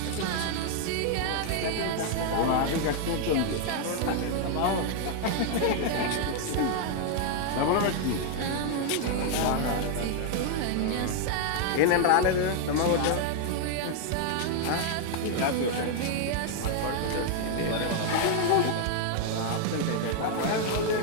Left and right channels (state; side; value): different; both; correlation 0.00